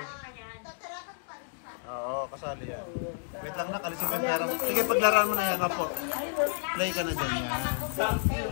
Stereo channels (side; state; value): right; silent; digital silence